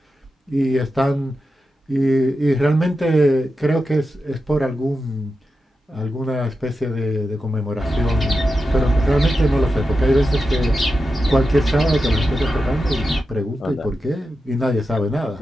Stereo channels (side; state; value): both; normal; correlation 0.90